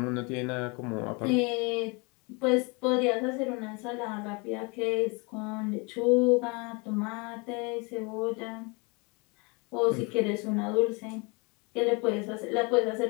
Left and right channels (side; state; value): right; quieter; 29.9 dB